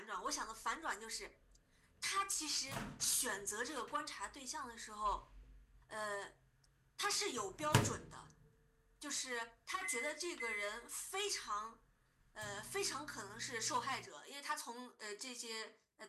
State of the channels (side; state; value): both; identical; correlation 1.00